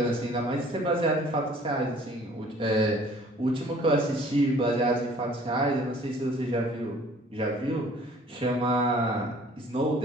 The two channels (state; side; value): normal; both; correlation 0.53